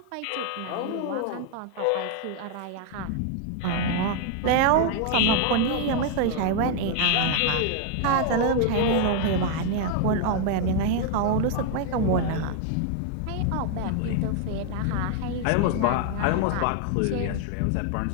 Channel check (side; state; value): both; different; correlation 0.00